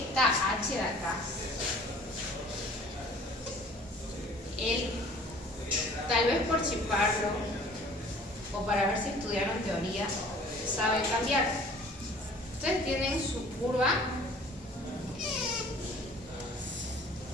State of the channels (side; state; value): both; normal; correlation 0.50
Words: H de acá, él, tal vez por chiparlo o para ver si estudiaron teoría, sabe cambiar. Ustedes tienen su curva